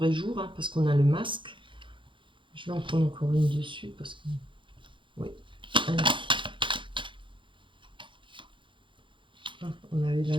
jour, hein, parce qu'on a le masque. Je vais en prendre encore une dessus parce que... Oui. Allez. Ah,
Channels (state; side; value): late; left; 0.24 ms